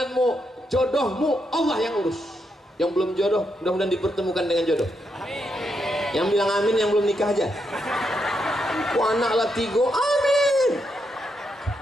jodohmu Allah yang urus. Yang belum jodoh mudah-mudahan dipertemukan dengan jodoh. Amin. Yang bilang amin yang belum nikah aja. Anak lah 3, amin.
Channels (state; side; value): normal; both; correlation 0.81